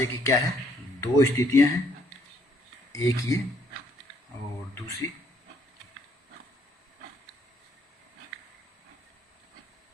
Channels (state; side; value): normal; both; correlation 0.67